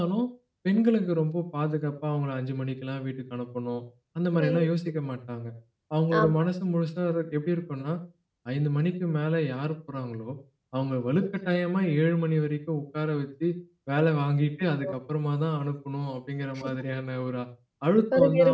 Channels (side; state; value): both; identical; correlation 1.00